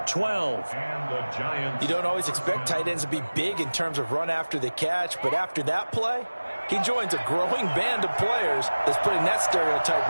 12. And the Giants. You don't always expect tight ends to be big in terms of run after the catch, but after that play, he joins a growing band of players that's putting that stereotype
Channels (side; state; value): both; inverted; correlation -1.00